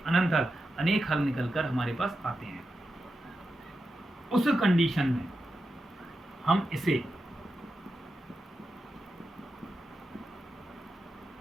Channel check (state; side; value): normal; both; correlation 0.89